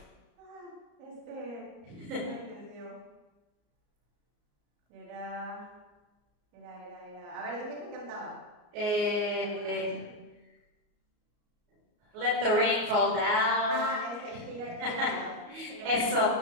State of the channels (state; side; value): late; left; 34 ms